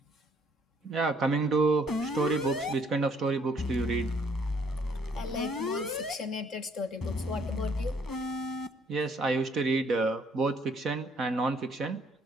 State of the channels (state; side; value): normal; both; correlation 0.64